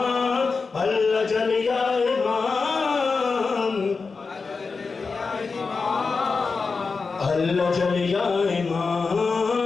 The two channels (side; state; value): right; quieter; 4.6 dB